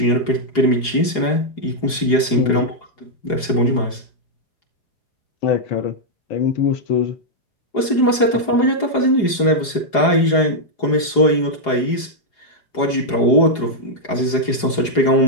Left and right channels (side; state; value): right; late; 4.8 ms